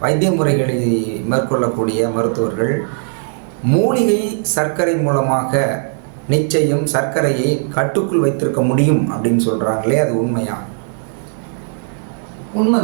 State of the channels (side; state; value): left; silent; 62 dB below the other